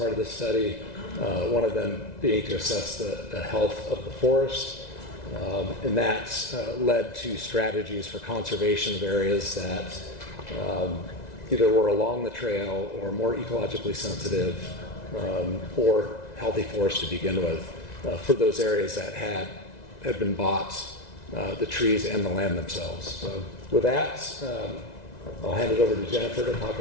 of this study, one of them being to assess the health of the forest. And that led to strategies for conservation of areas that either were along the trail or more ecologically sensitive or healthy forest to begin with for those areas that had been bought, the trees and the land themselves. So with that, I'll hand it over to Jennifer to talk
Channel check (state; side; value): late; right; 2.0 ms